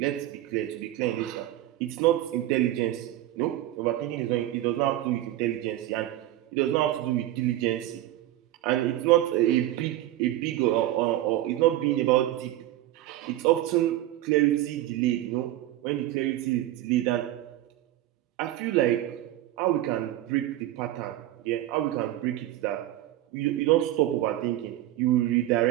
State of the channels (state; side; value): quieter; left; 14.3 dB